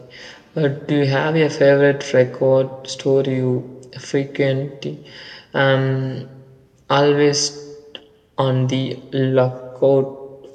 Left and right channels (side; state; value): both; identical; correlation 1.00